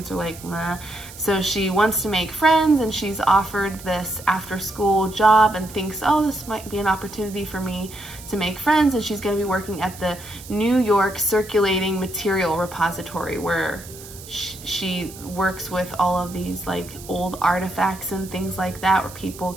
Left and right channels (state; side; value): noise; right; hiss, 16 dB below the sound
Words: are like, meh. So she wants to make friends, and she's offered this after-school job and thinks, oh, this might be an opportunity for me to make friends, and she's going to be working at the New York Circulating Material Repository, where she works with all of these like old artifacts and things like that, where